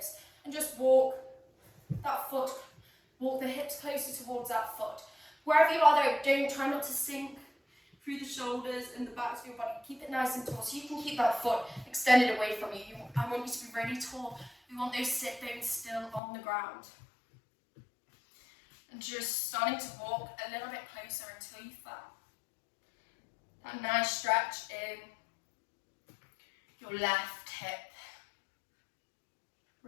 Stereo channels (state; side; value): drops out; right; at 16.2 s